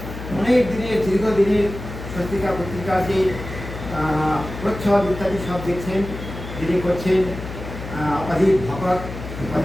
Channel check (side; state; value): left; noise; hum, 10 dB below the sound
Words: অনেক দিনের দীর্ঘদিনের সত্যিকার পত্রিকার যে প্রচ্ছদ ইত্যাদি সব দেখছেন, যিনি করছেন অজিত ভকত,